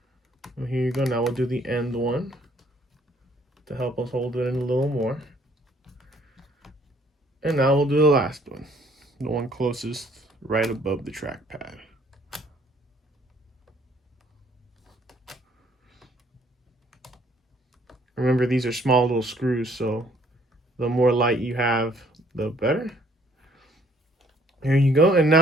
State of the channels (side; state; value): both; normal; correlation 0.62